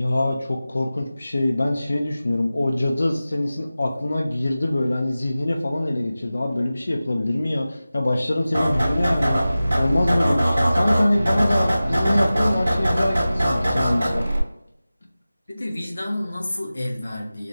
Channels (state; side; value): inverted; both; correlation -0.96